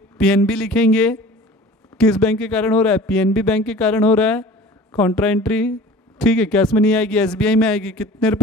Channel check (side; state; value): both; normal; correlation 0.43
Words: पीएनबी लिखेंगे, किस बैंक के कारण हो रहा है, पीएनबी बैंक के कारण हो रहा है, कॉन्ट्रा एंट्री, ठीक है, कैश में नहीं आएगी, एसबीआई में आएगी, कितने